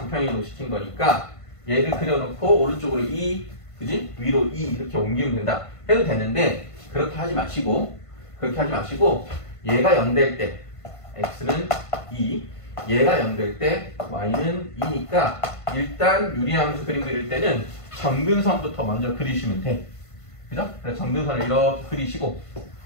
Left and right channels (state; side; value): late; right; 1.5 ms